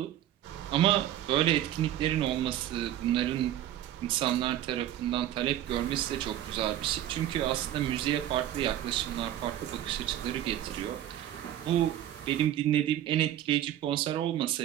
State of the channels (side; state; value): left; quieter; 12.2 dB